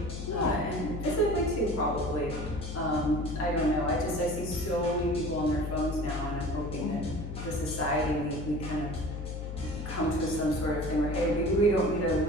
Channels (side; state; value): left; noise; hum, 7 dB below the sound